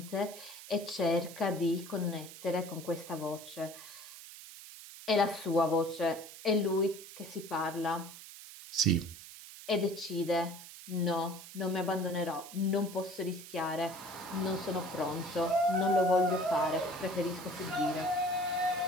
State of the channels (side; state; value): right; noise; hiss, 15 dB below the sound